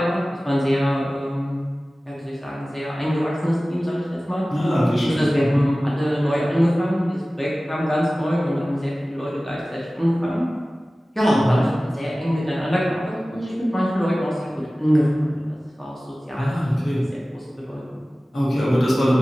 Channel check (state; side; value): normal; both; correlation 0.97